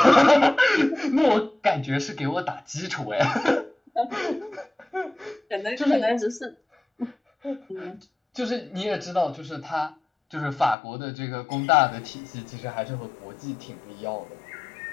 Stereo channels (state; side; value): drops out; right; at 10.8 s